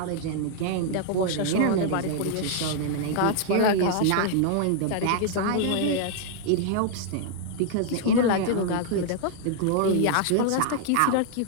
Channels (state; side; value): different; both; correlation -0.01